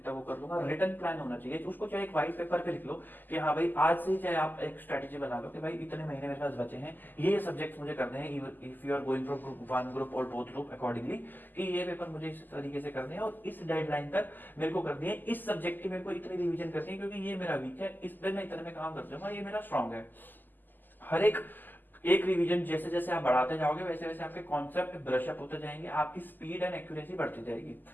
तक वो कर लूंगा। रिटर्न प्लान होना चाहिए। उसको चाहे एक व्हाइट पेपर पे लिख लो कि हाँ भाई आज से ही चाहे आप एक स्ट्रेटेजी बना लो कि भाई इतने महीने मेरे पास बचे हैं, ये सब्जेक्ट्स मुझे करने हैं, if you are going from group 1 group और बोथ ग्रुप अकॉर्डिंगली, कि ये पेपर मुझे इस तरीके से करने हैं और इस डेडलाइन तक मेरे को करनी है, इस सब्जेक्ट की मेरे को इतनी रिविजन करनी है, क्योंकि ये मेरा वीक है, इस पे मैं इतने में काम कर दूंगा, ये मेरा स्ट्रॉन्ग है। हर एक एक रिवीजन जैसे जैसे आप बढ़ाते जाओगे, वैसे वैसे आपके कॉन्सेप्ट ब्रश अप होते जाएंगे, आपकी स्पीड एंड एक्यूरेसी बढ़ती जाएगी।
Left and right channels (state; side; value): late; right; 0.088 ms